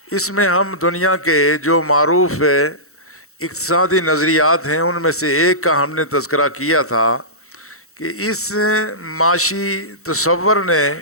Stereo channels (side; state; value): right; late; 0.64 ms